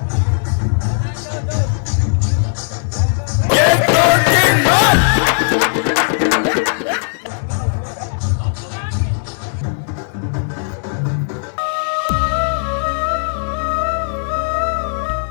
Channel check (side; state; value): right; silent; 65 dB below the other